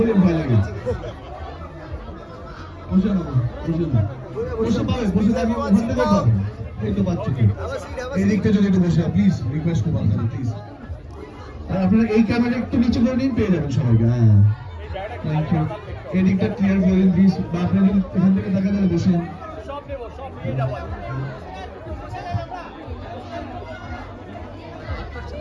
ভয় লাগে। বসে না, বসে না, বসে পাবে, বসে থাকবে, ওখান থেকে পাবে। এই তো পাচ্ছি, এই দিকটা যদি একটু বসে, প্লিজ রিকোয়েস্ট করবো আপনাদের, প্লিজ। আর আপনারা এই ক্যামেরা একটু নিচে করে নিন, পেয়ে যাবেন সবাইকে। হ্যাঁ, থ্যাংক ইউ। এই দিকটা ক্লিয়ার করে দিন প্লিজ, বা আপনারা যদি এখান থেকে দেখা যায় বসে।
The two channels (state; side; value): identical; both; correlation 1.00